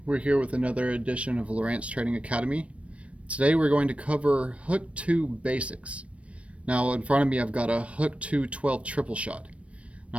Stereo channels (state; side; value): late; left; 0.063 ms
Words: We're here with another edition of Lowrance Trading Academy. Today we're going to cover Hook 2 basics. Now in front of me I've got a Hook 2 12 triple shot.